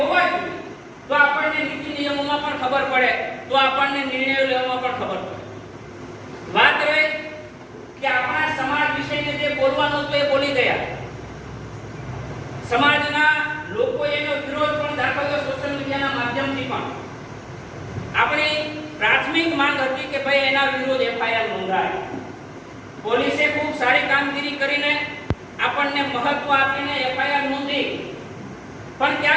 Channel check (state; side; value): identical; both; correlation 1.00